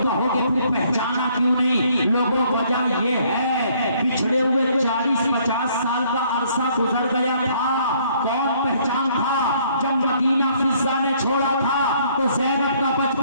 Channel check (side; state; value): both; inverted; correlation -0.64